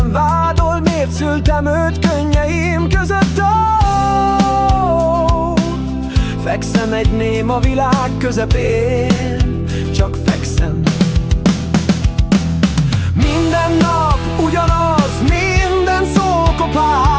vádol. Miért szültem őt könnyeim között? Fekszem egy néma világ közepén, csak fekszem. Minden nap ugyanaz, minden szó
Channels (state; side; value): identical; both; correlation 1.00